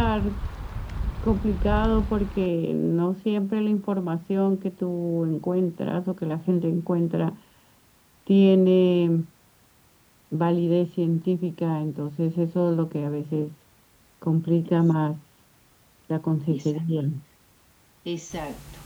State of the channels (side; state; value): both; identical; correlation 1.00